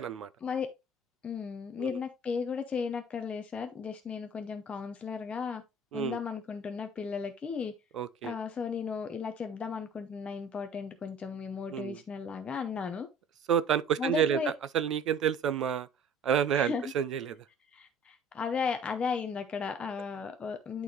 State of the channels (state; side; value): normal; both; correlation 0.49